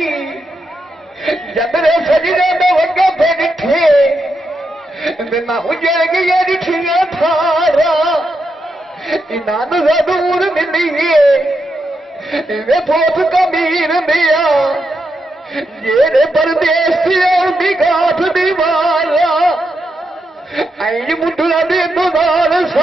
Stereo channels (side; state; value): both; normal; correlation 0.84